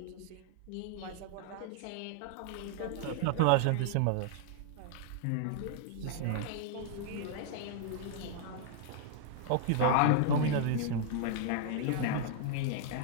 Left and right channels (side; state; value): both; different; correlation -0.01